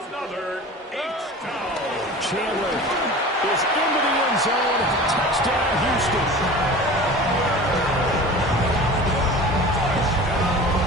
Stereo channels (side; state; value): both; normal; correlation 0.37